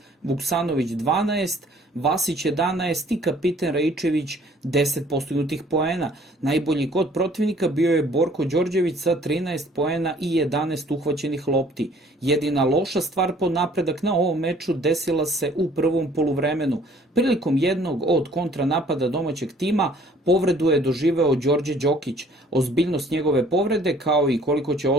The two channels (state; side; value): normal; both; correlation 0.57